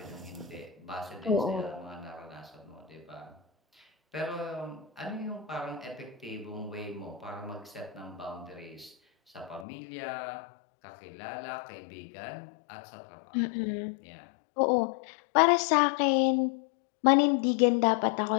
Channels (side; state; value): right; drops out; at 9.7 s